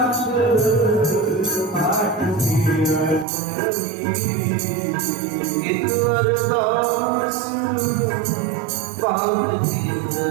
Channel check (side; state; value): left; drops out; at 3.2 s